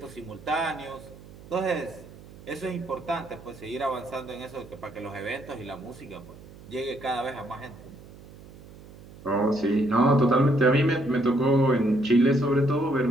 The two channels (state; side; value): noise; right; hum, 19 dB below the sound